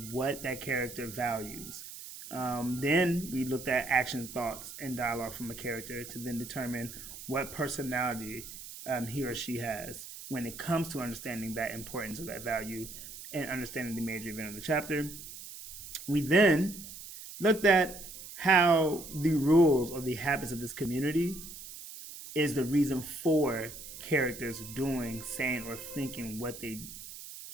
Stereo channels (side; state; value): right; noise; hiss, 13 dB below the sound